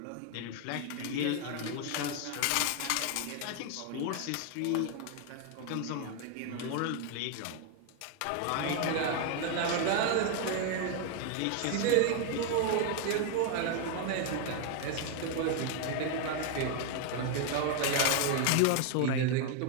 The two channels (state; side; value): different; both; correlation 0.01